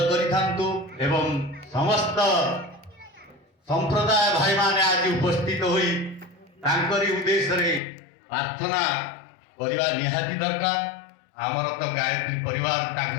करिथांतु एवं समस्त संप्रदाय भाई माने आज उपस्थित होई तांकरी उद्देश्य रे प्रार्थना करवा निहाती दरकार। आमर तो गायत्री परिवार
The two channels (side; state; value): right; drops out; at 7.8 s